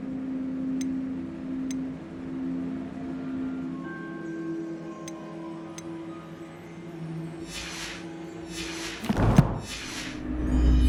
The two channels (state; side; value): identical; both; correlation 1.00